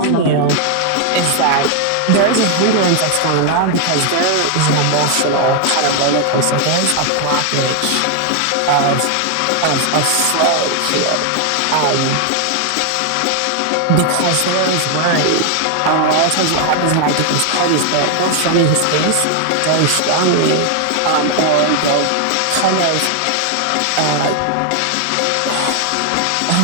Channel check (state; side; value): different; both; correlation 0.00